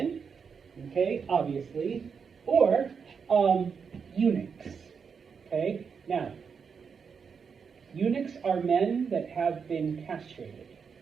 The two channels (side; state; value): left; quieter; 6.1 dB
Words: okay, obviously, or eunuchs. Okay. Now, eunuchs are men that have been castrated.